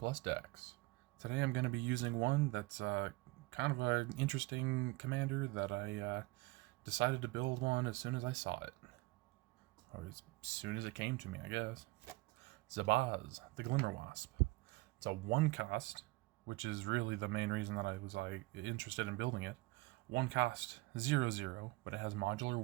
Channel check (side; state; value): left; quieter; 21.4 dB